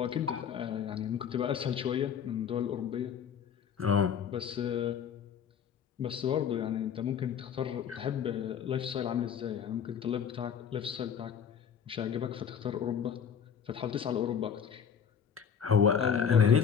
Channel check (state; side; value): quieter; right; 7.6 dB